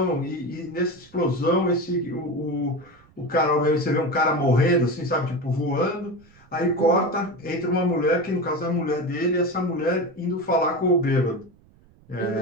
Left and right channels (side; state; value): right; noise; rumble, 28 dB below the sound